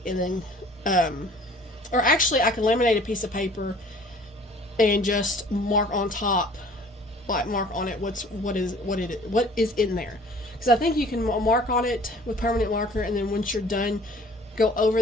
and then or actually I can laminate a piece of paper and just mark on top, like mark on it what is in there, because I think you can mark on it with permanent marker, and then once you're done, go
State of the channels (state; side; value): normal; both; correlation 0.51